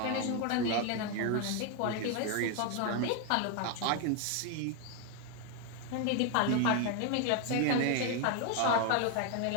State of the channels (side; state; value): both; different; correlation 0.01